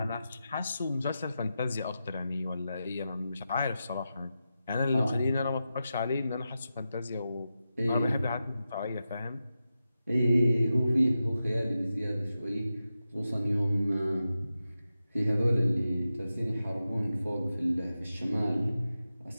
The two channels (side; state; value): both; inverted; correlation -0.91